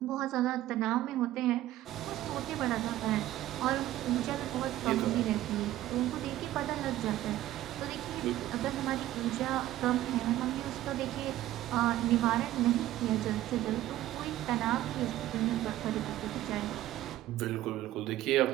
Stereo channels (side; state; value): left; quieter; 14.4 dB